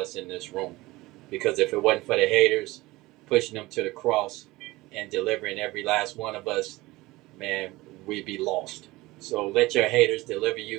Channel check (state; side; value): quieter; left; 20.0 dB